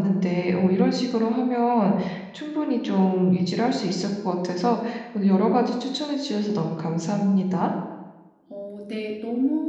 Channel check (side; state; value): both; identical; correlation 1.00